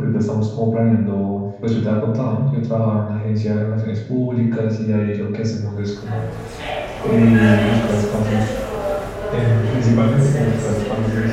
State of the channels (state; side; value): identical; both; correlation 1.00